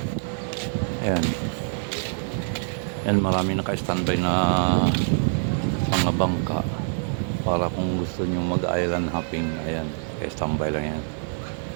Ayan. And marami naka-standby na mga bangka para kung gusto nyo mag-island hopping. Ayan, naka-standby lang yan.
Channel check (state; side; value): silent; left; digital silence